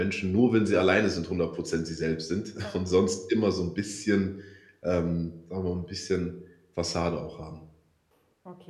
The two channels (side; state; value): both; identical; correlation 1.00